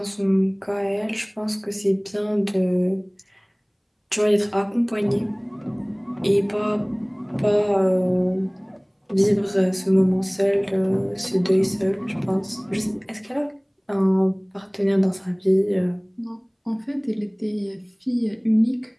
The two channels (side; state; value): both; identical; correlation 1.00